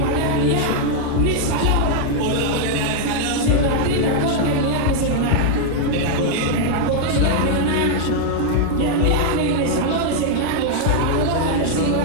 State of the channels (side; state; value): both; different; correlation -0.01